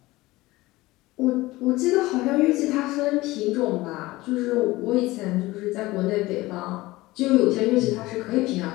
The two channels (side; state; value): right; quieter; 19.3 dB